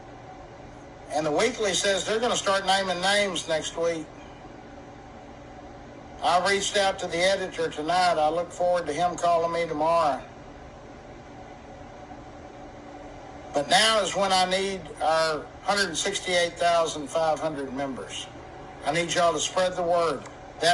And the Weekly says they're going to start naming names next week. I reached out to the editor tonight. I look forward to him calling me tomorrow. But now is when I need our 168,500 members. I need y'all to spread the word.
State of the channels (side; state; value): both; identical; correlation 1.00